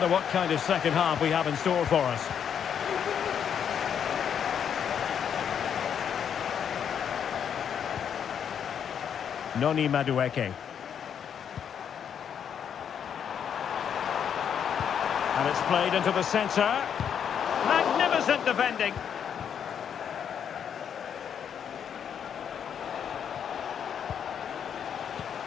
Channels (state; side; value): quieter; right; 8.2 dB